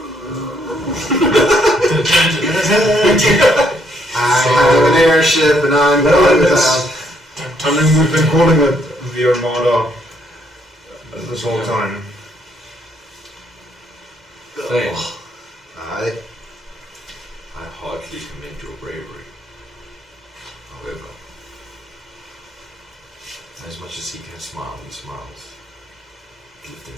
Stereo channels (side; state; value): both; normal; correlation 0.71